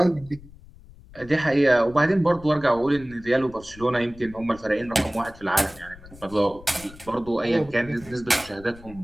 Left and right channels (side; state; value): left; noise; rumble, 20 dB below the sound